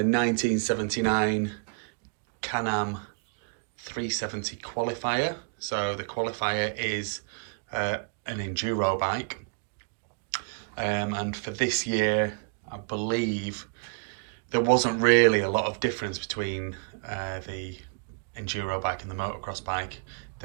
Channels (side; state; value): left; quieter; 35.6 dB